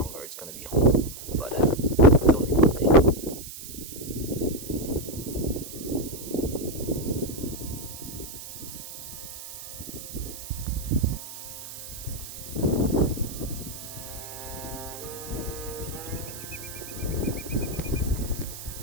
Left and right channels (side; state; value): right; noise; hiss, 11 dB below the sound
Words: it's going to be home, but it's only Monday.